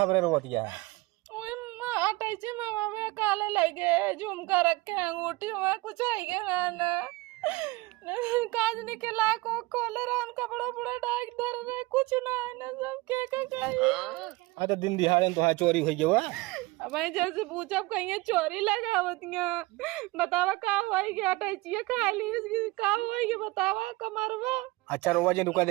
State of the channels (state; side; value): quieter; left; 21.8 dB